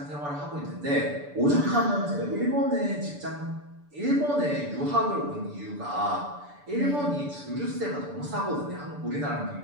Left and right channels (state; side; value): late; left; 6.9 ms